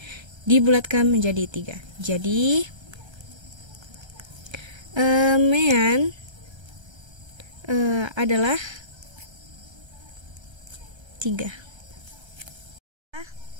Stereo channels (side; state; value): left; late; 1.3 ms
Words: Dibulatkan menjadi 3. Jadi, mean adalah 3.